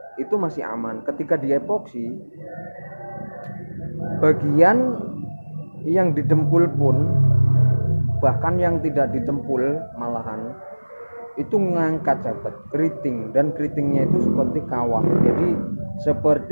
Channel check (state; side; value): inverted; both; correlation -1.00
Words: itu masih aman. Ketika di epoksi, bagian yang didempul pun, bahkan yang tidak didempul malahan itu ngangkat sahabat, keriting, dan keritingnya itu seperti kawah. Jadi